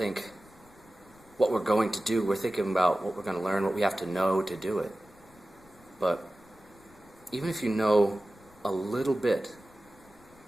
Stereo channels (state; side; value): noise; left; rumble, 28 dB below the sound